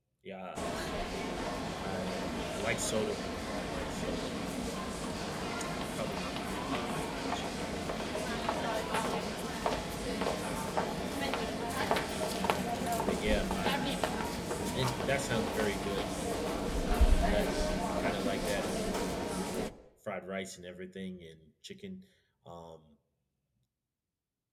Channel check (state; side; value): identical; both; correlation 1.00